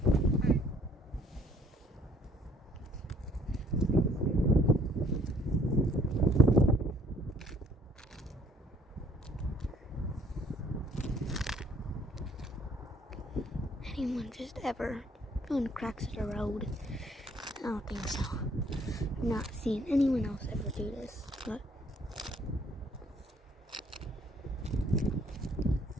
anyone just ever found cracks in the road? I don't think so. I've not seen anyone else ever do this, but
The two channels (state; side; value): normal; both; correlation 0.62